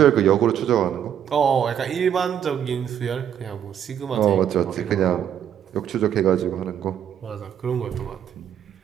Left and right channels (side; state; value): left; quieter; 9.4 dB